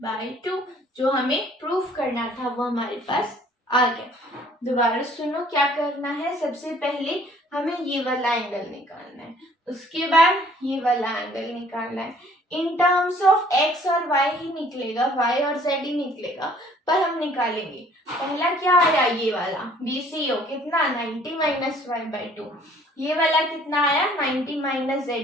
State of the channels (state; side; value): normal; both; correlation 0.57